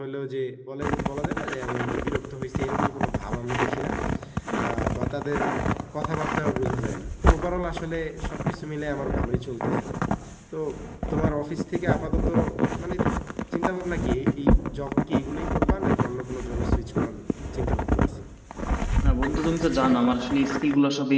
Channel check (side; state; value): both; identical; correlation 1.00